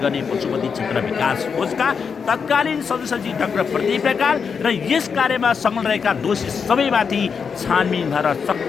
गर्ने पशुपति क्षेत्र विकास कोषका तत्कालीन सदस्य डाक्टर प्रदीप ढकाल र यस कार्यमा संलग्न रहेका दोषी सबैमाथि छानबिन भएर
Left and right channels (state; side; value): quieter; right; 6.1 dB